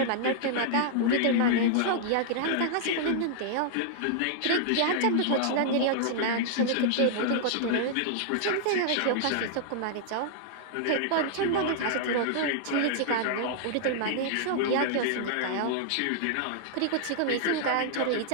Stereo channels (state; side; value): different; both; correlation -0.01